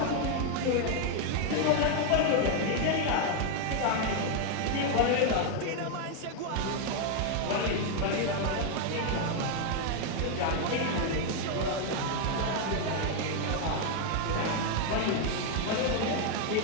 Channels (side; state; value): both; different; correlation 0.01